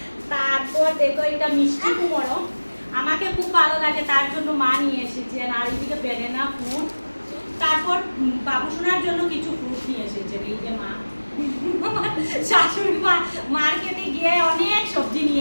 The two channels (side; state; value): both; inverted; correlation -1.00